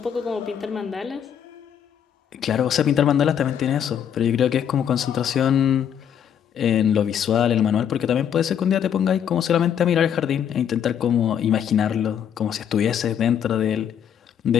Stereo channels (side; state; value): right; quieter; 8.8 dB